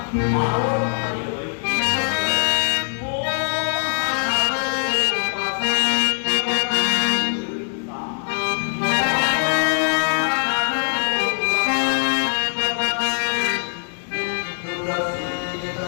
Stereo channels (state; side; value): silent; right; digital silence